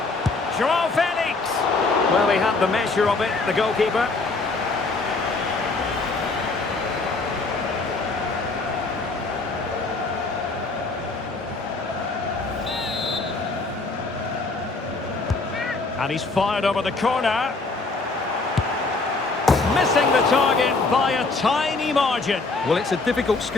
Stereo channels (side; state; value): right; quieter; 3.7 dB